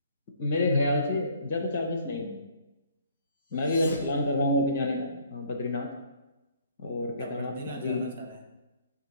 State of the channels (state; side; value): inverted; both; correlation -0.59